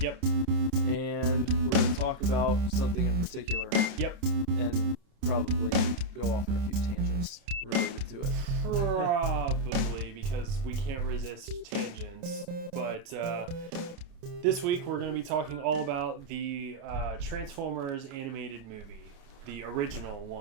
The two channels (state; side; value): late; left; 29 ms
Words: Yep. But this week we're going to be talking all about the Transformers animated movie, the original